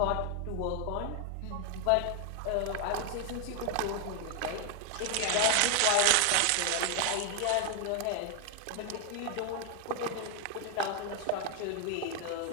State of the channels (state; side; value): different; both; correlation 0.01